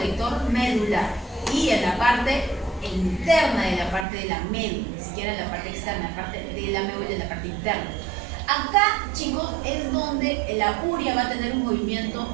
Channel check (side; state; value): left; drops out; at 4.0 s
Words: medular. Y en la parte interna de la parte de la médula, ni siquiera en la parte externa, la parte de la médula en la parte interna. Acá, chicos, es donde la urea va a tener un